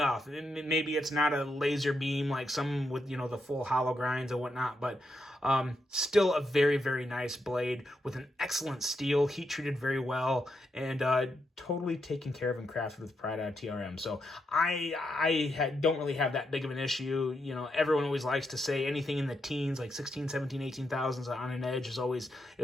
Maybe it's not a laser beam like some with, you know, the full hollow grinds and whatnot, but still a very, very nice blade with an excellent steel, heat treated very well, and totally taken care of and crafted with pride out of TRM. So I don't really have that big of an issue. You know, everyone always likes to say anything in the teens, like 16, 17, 18,000s on an edge is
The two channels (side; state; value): both; normal; correlation 0.82